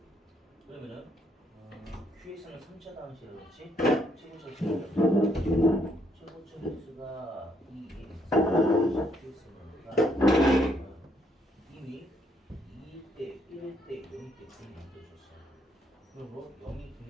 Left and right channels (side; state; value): both; normal; correlation 0.72